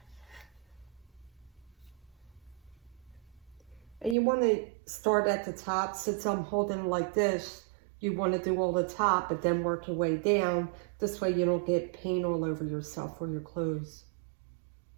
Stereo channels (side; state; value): left; drops out; at 4.2 s